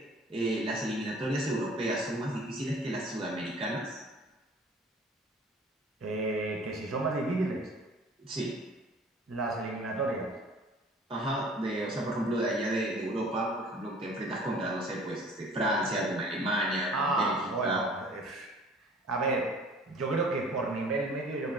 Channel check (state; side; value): normal; both; correlation 0.49